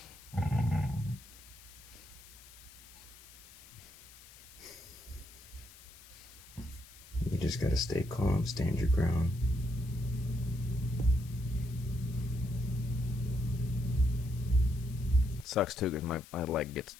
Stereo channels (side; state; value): left; noise; hiss, 20 dB below the sound